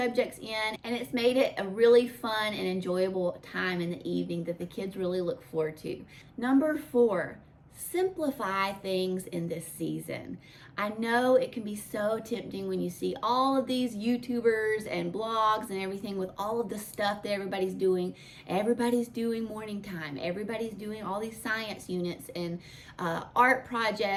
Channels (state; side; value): identical; both; correlation 1.00